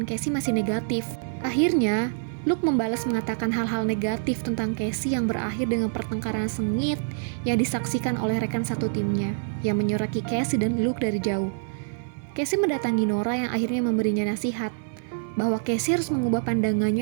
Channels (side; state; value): left; silent; 61 dB below the other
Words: Casey masih negatif. Akhirnya, Luke membalas mengatakan hal-hal negatif tentang Casey yang berakhir dengan pertengkaran sengit yang disaksikan oleh rekan satu timnya, yang menyoraki Casey dan Luke dari jauh. Casey mendatangi Nora yang akhirnya memberinya nasihat bahwa Casey harus mengubah